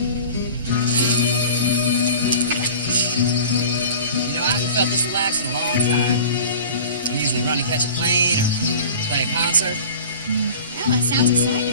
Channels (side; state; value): both; inverted; correlation -0.40